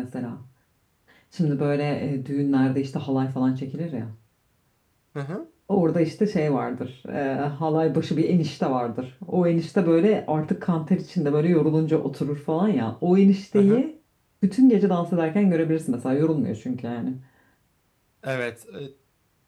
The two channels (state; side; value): identical; both; correlation 1.00